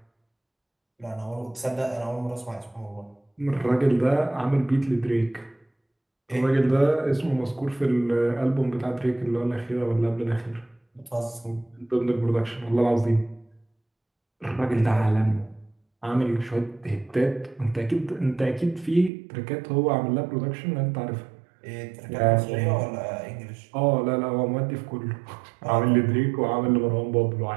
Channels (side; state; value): left; drops out; at 19.1 s